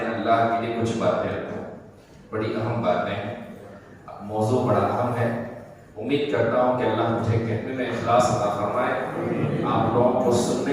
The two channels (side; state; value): both; identical; correlation 1.00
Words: اللہ کے لیے کچھ باتیں رکھوں۔ بڑی اہم باتیں ہیں، موضوع بڑا اہم ہے۔ امید کرتا ہوں کہ اللہ مجھے کہنے میں اخلاص عطا فرمائے، آپ لوگوں کو